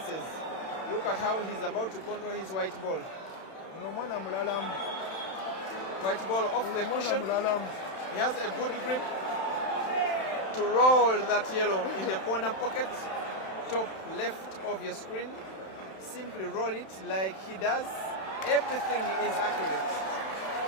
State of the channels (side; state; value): right; late; 31 ms